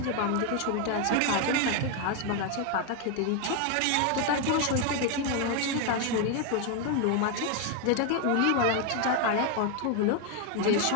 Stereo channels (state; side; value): different; both; correlation 0.01